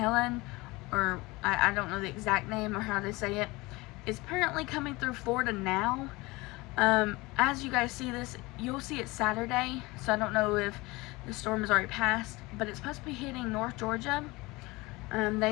or I don't know the exact name or how they say it. It's apparently coming through Florida now. As you guys see this, you'll see it Saturday, so I don't know if the storm has already passed, but it's supposed to be hitting North Georgia.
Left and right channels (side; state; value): right; quieter; 22.6 dB